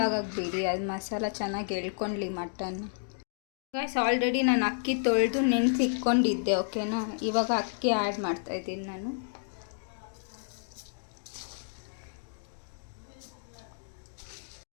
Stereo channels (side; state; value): right; silent; digital silence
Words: ಆಗೋಕ್ಕೆ ಬಿಡಿ. ಅದು ಮಸಾಲ ಚೆನ್ನಾಗಿ ಎಳ್ಕೊಳ್ಳಿ ಮಟನ್. ಗೈಸ್, ಆಲ್ರೆಡಿ ನಾನು ಅಕ್ಕಿ ತೊಳೆದು ನೆನೆಸಿಟ್ಕೊಂಡಿದ್ದೆ, ಓಕೆನಾ? ಇವಾಗ ಅಕ್ಕಿ ಆ್ಯಡ್ ಮಾಡ್ತಾಯಿದ್ದೀನಿ ನಾನು.